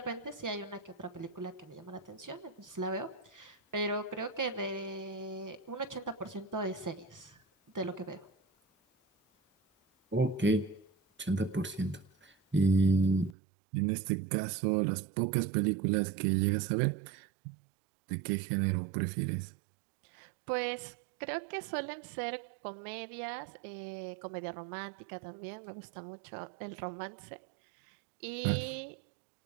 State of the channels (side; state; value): left; drops out; at 13.4 s